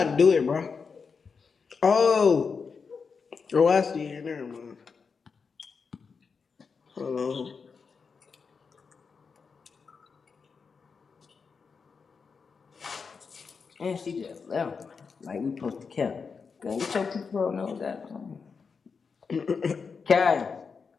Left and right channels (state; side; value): quieter; right; 5.4 dB